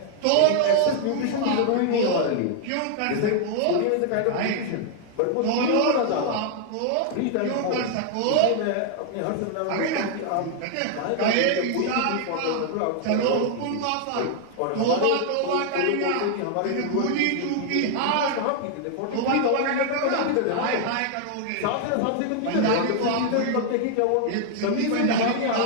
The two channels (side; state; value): both; different; correlation 0.00